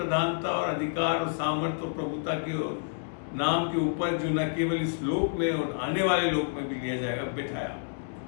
और अधिकार और सामर्थ्य और प्रभुता के और नाम के ऊपर, जो न केवल इस लोक में और आने वाले लोक में भी लिया जाएगा, बैठाया।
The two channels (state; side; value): silent; right; digital silence